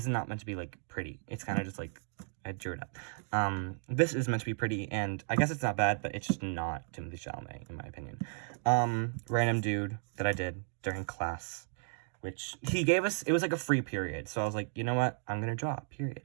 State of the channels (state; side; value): silent; left; 55 dB below the other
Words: is not meant to be, like, pretty. It's kind of just, like, I drew it up. This is meant to be pretty, and I guess it's not bad, but it's just not Timothy Chalamet, in my opinion. Random dude that I did during class, which he gave us, it was like a free period. So I was like, you know what? I'm going to draw,